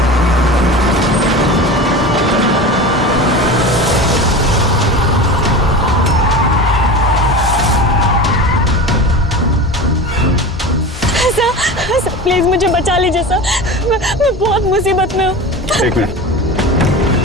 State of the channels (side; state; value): both; normal; correlation 0.30